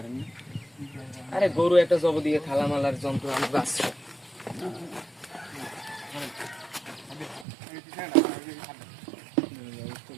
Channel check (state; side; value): drops out; left; at 7.5 s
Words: আরে গরু একটা জব দিয়ে থালামালার যন্ত্র আমরা আছে